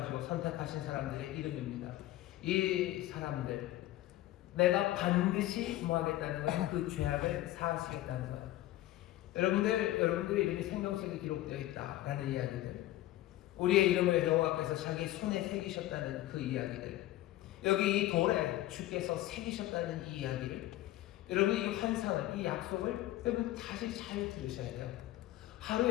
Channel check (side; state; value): right; quieter; 15.5 dB